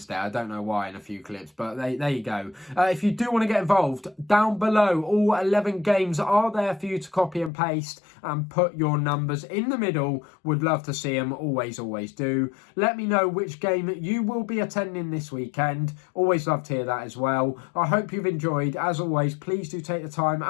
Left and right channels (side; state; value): right; drops out; at 7.5 s